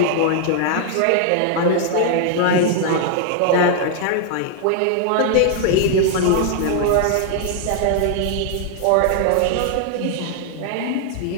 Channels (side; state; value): both; different; correlation 0.00